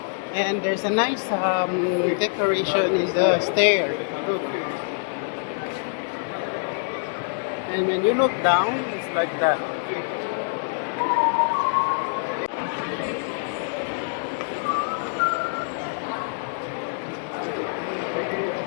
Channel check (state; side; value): silent; right; 62 dB below the other